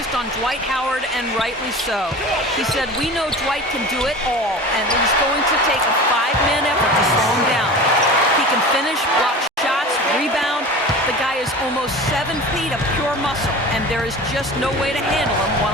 on Dwight Howard, and rightly so. He said, we know Dwight can do it all, and he's going to take a five-man effort to slow him down. He can finish, block shots, rebound. The guy is almost 7 feet of pure muscle, and there is just no way to handle him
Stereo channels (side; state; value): both; normal; correlation 0.35